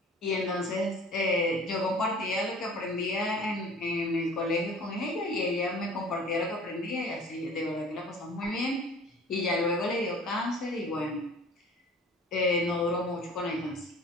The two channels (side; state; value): both; normal; correlation 0.46